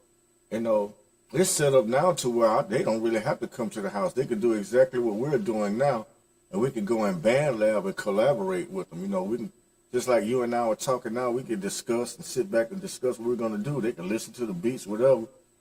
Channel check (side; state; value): both; identical; correlation 1.00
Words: you know. It's set up now to where they don't really have to come to the house. They could do exactly what we're doing now, and we could go in band lab and collaborate with them. You know, we can, just like you and I are talking now, we could discuss and sit back and discuss what we're going to do. They can listen to the beats, whatever.